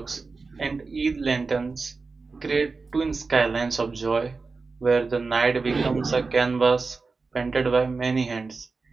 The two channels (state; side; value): quieter; left; 4.2 dB